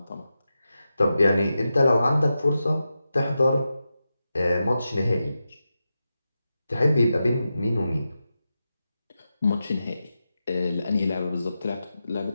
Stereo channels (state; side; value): inverted; both; correlation -0.90